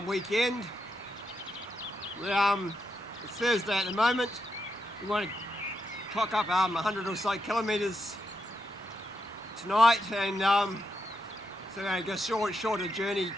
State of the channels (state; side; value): normal; both; correlation 0.83